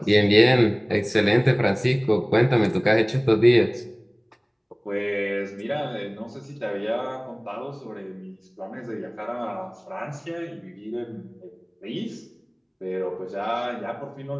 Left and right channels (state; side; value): identical; both; correlation 1.00